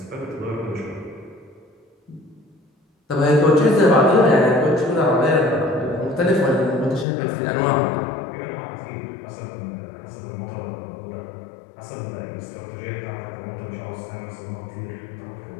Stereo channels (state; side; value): drops out; right; at 7.1 s